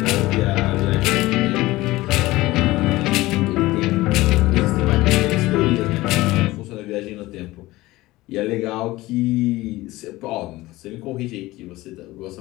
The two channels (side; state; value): right; quieter; 18.6 dB